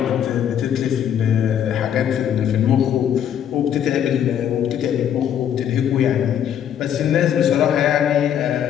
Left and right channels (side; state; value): right; quieter; 9.5 dB